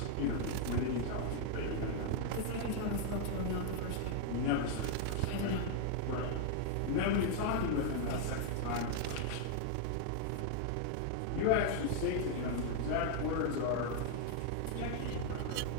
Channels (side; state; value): both; different; correlation 0.00